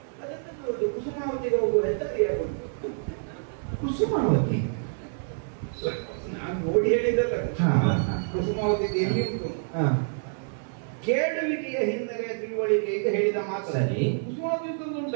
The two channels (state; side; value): silent; left; digital silence